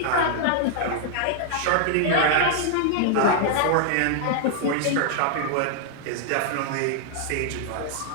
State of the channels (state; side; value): different; both; correlation -0.01